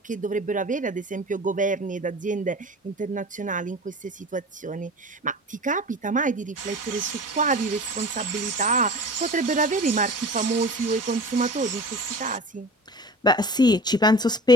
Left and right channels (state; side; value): normal; both; correlation 0.38